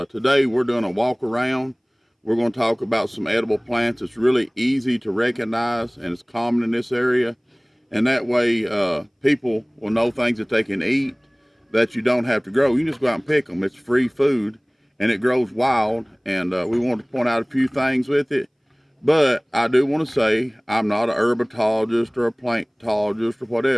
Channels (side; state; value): both; identical; correlation 1.00